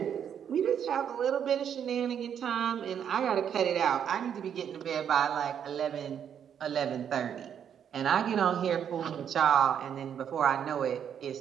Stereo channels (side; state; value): left; quieter; 8.6 dB